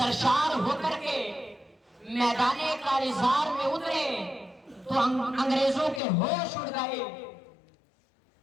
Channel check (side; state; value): right; drops out; at 6.0 s